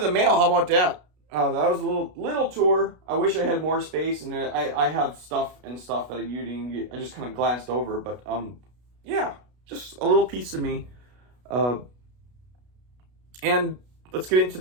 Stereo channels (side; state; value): left; late; 33 ms